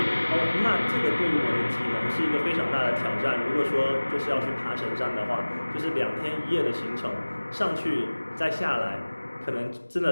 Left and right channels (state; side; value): inverted; both; correlation -1.00